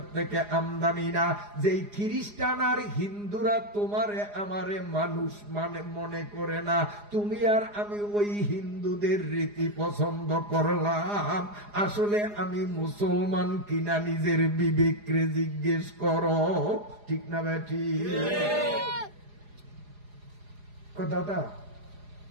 থেকে আমদানি না। যেই খ্রিস্টান আর হিন্দুরা তোমারে আমারে মানুষ মনে করে না, তুমি আর আমি ওই হিন্দুদের রীতি পছন্দ করলাম। আসলে আমি মুসলমান কিনা নিজের বিবেকরে জিজ্ঞেস করো, ঠিক না বেটি? দাদা,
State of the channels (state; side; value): late; left; 4.9 ms